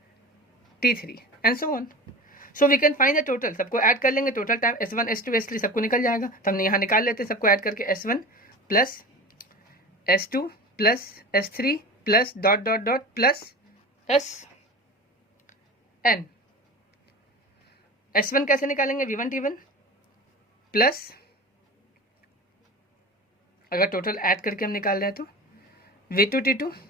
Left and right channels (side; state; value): both; normal; correlation 0.32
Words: T3 and so on. So we can find the total, सबको ऐड कर लेंगे, total time S1 S2 S3 सबको निकल जाएगा। तो हमने यहाँ निकाल लेते हैं सबको ऐड करके, S1 plus S2 plus S3 plus dot dot dot plus SN। S1 कैसे निकालेंगे, V1 T1 प्लस अगर टोटल ऐड करके हम निकाल रहे हैं तो v2t2